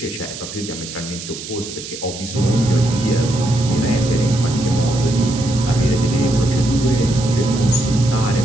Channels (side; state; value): right; noise; hiss, 11 dB below the sound